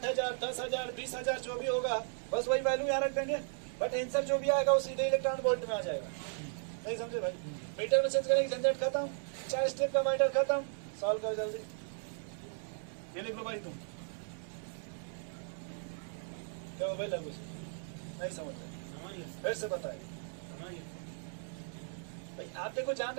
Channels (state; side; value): silent; left; digital silence